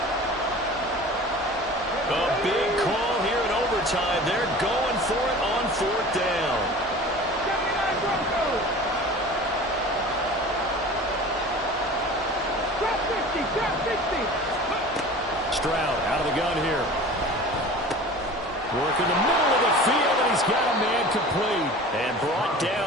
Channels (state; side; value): normal; both; correlation 0.40